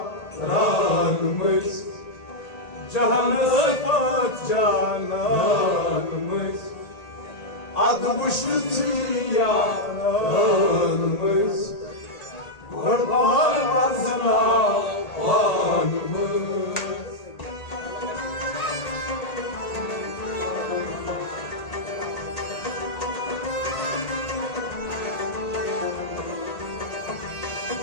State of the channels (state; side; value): late; right; 1.8 ms